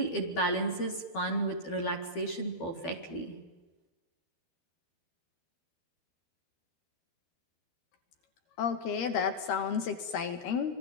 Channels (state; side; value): late; right; 12 ms